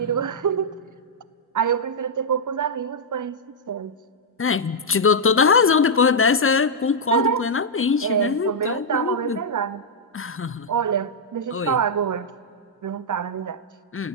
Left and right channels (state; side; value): normal; both; correlation -0.06